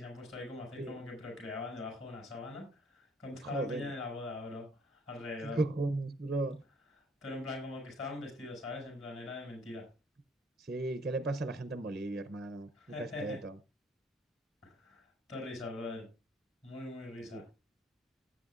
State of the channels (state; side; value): normal; both; correlation 0.62